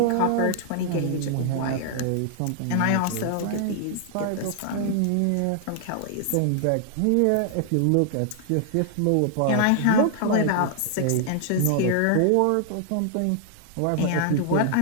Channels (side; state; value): both; different; correlation -0.01